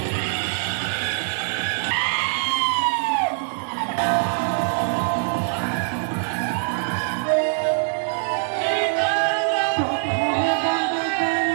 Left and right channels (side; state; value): left; silent; 63 dB below the other